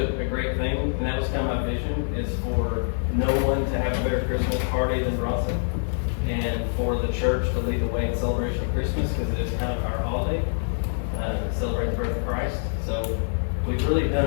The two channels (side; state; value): right; silent; digital silence